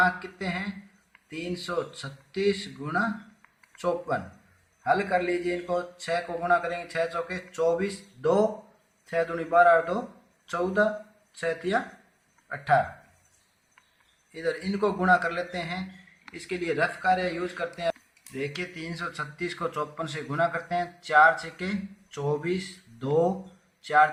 कितने हैं 336 गुणा 54। हल कर लीजिए इनको, 6 को गुणा करेंगे 6 चौके 24, 2 6 दूनी 12 और 2 14, 6 तिया 18। इधर इनको गुणा कर लेते हैं, इसके लिए रफ कार्य यूज करते हैं। देखिए 336 को 54 से गुणा करते हैं, 4 छक्के 24, 2 4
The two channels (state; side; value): identical; both; correlation 1.00